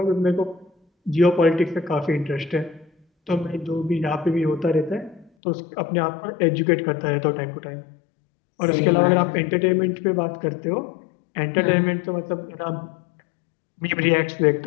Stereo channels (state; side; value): drops out; right; at 5.3 s